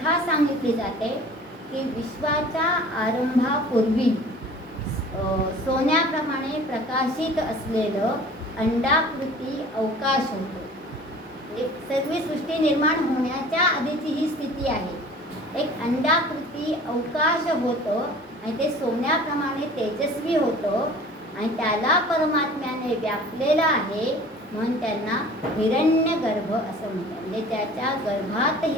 सांगितली जाते की विश्वाच्या आरंभापूर्वी सोन्याप्रमाणे प्रकाशित असलेलं अंडाकृती अवकाश होतो. सर्व सृष्टी निर्माण होण्याच्या आधीची ही स्थिती आहे. एक अंडाकृती अवकाश होतं आणि ते सोन्याप्रमाणे तेजस्वी होतं आणि त्याला परमात्म्याने व्यापलेलं आहे, म्हणून त्यांना हिरण्यगर्भ असं म्हणतात. म्हणजे ज्याच्या गर्भात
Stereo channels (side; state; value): both; normal; correlation 0.45